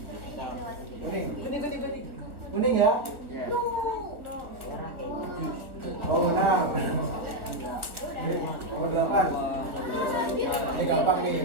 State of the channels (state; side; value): late; left; 1.2 ms